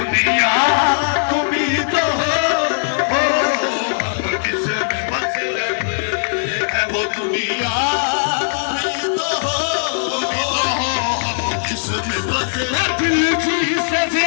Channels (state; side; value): silent; right; digital silence